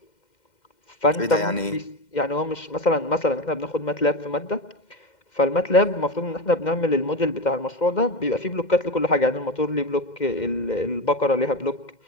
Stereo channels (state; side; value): late; right; 2.1 ms